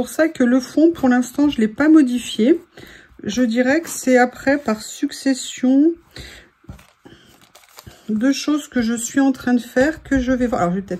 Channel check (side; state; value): both; identical; correlation 1.00